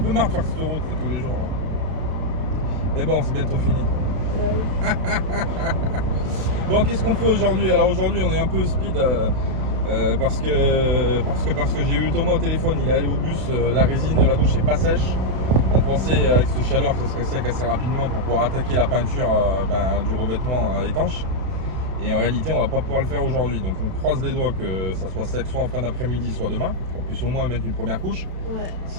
marre de faire cette route là, tous les jours. Là. Mais bon, c'est bientôt fini. Bon, qu'est-ce qu'on fait aujourd'hui? Alors aujourd'hui, on est un peu speed parce que j'ai eu Thomas au téléphone. Il est allé au bus, la résine de la douche n'est pas sèche. On pensait avec cette chaleur que ce serait sec assez rapidement pour pouvoir attaquer la peinture du revêtement étanche. Et en réalité, on va pas pouvoir le faire aujourd'hui. Donc on croise les doigts que ça soit sec soit en fin d'après-midi, soit demain. Qu'on puisse au moins mettre une première couche. Ouais.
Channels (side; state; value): left; late; 32 ms